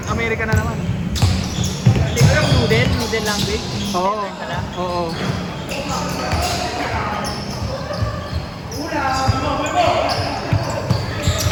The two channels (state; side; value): identical; both; correlation 1.00